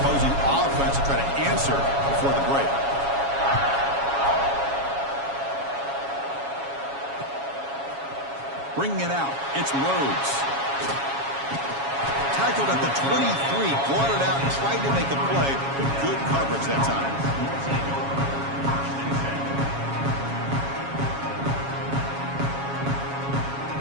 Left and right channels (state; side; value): late; left; 7.2 ms